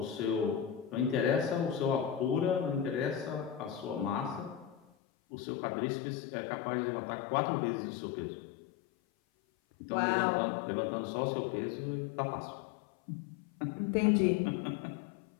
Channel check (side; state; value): right; drops out; at 4.8 s